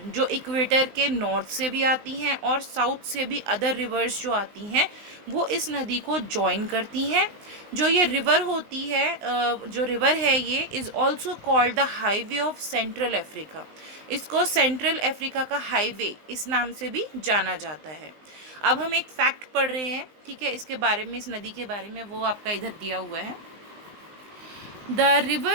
जो इक्वेटर के नॉर्थ से भी आती हैं और साउथ से भी अदर रिवर्स जो आती हैं वो इस नदी को जॉइन करती हैं। जो ये रिवर होती है, जो रिवर है, ये is also called the highway of central Africa. इसको सेंट्रल अफ्रीका का हाईवे इस नाम से भी जाना जाता है। अब हम एक फैक्ट पढ़ रहे हैं, ठीक है, इसके बारे में, इस नदी के बारे में, वो आपका इधर दिया हुआ है। The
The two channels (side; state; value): left; late; 19 ms